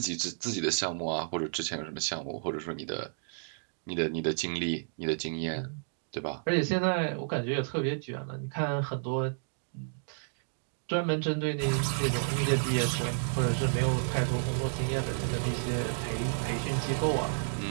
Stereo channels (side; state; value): left; silent; digital silence